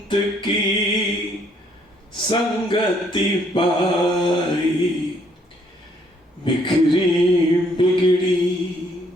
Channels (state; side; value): normal; both; correlation 0.67